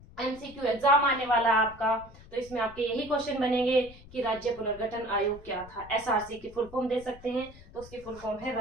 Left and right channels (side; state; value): left; noise; rumble, 19 dB below the sound